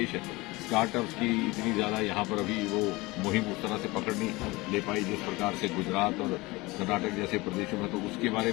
है, स्टार्टअप्स की इतनी ज़्यादा यहाँ पर अभी वो मुहिम उस तरह से पकड़ नहीं ले पाई जिस प्रकार से गुजरात और कर्नाटक जैसे प्रदेशों में, तो उसके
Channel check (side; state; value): right; quieter; 22.3 dB